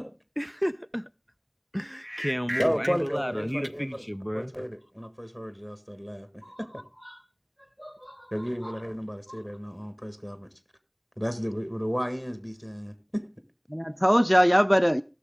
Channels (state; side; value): identical; both; correlation 1.00